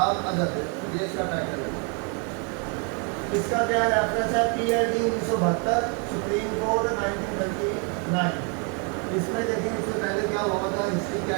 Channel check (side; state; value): left; quieter; 36.3 dB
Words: other, ये इसका टाइटल है। इसका क्या रेफरेंस है, PID 1972, सुप्रीम कोर्ट 1939। इसमें देखें इससे पहले क्या हुआ था, हिस्ट्री क्या